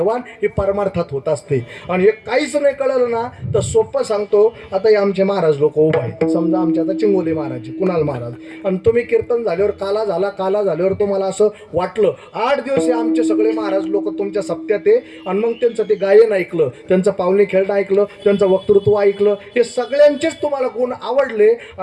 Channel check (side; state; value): both; identical; correlation 1.00